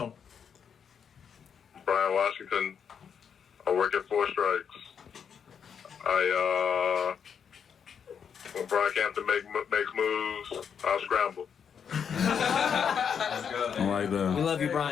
Brian Washington. I work at 4 Strikes. When Brockhampton makes moves, I'll scramble. I like We that. love you,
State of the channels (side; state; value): right; quieter; 7.3 dB